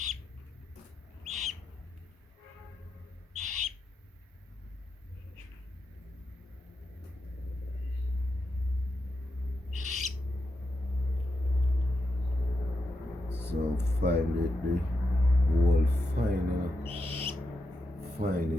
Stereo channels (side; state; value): both; normal; correlation 0.86